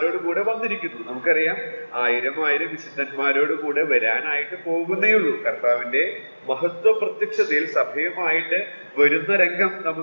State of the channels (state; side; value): inverted; both; correlation -1.00